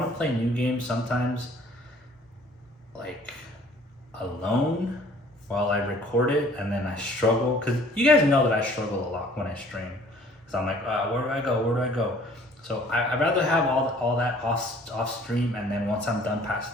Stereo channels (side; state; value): both; normal; correlation 0.55